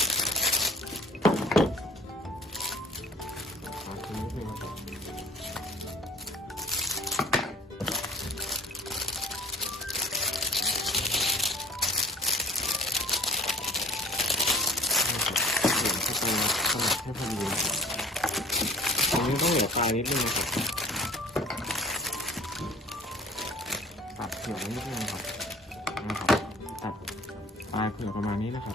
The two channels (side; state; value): both; normal; correlation 0.47